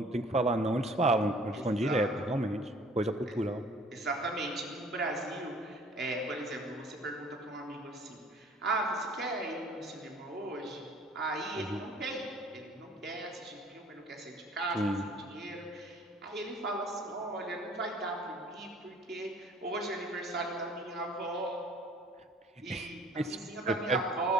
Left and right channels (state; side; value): normal; both; correlation 0.52